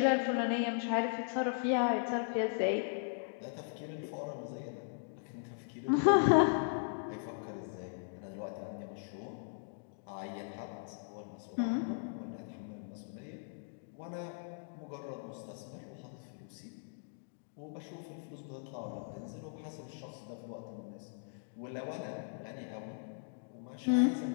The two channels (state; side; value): silent; right; digital silence